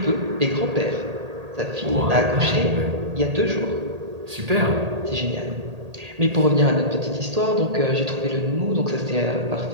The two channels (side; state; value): left; late; 1.8 ms